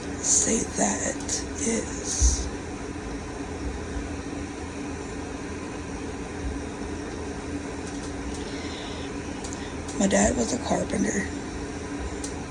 say that is my dad was a carpenter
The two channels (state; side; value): identical; both; correlation 1.00